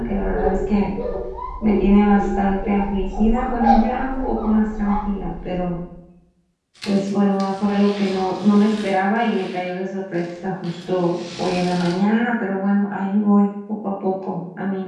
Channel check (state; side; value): identical; both; correlation 1.00